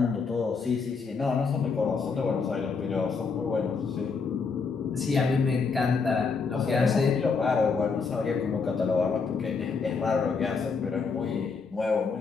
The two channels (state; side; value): quieter; right; 5.0 dB